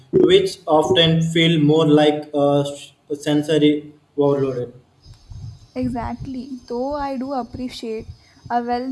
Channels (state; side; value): identical; both; correlation 1.00